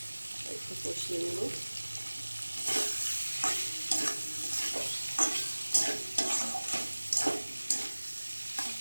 একটু কষিয়ে নেব।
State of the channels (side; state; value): both; inverted; correlation -1.00